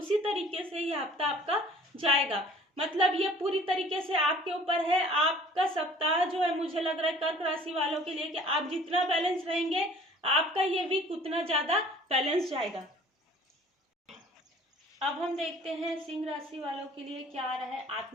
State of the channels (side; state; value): both; normal; correlation 0.51